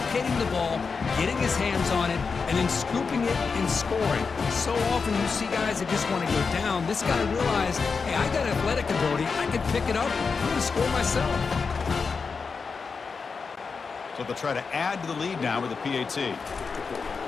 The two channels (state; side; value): quieter; right; 5.1 dB